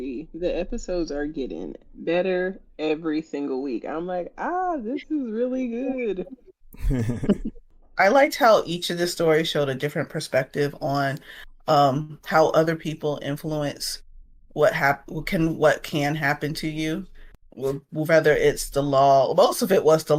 The episodes are getting better every single week. I'm like, this is really good. I liked how each of the stories showed a different perspective on how other people influence what can happen to you. Whether it's the law, most of it was the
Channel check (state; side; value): identical; both; correlation 1.00